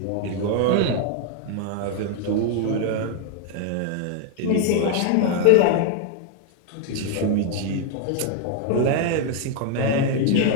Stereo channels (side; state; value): both; different; correlation 0.00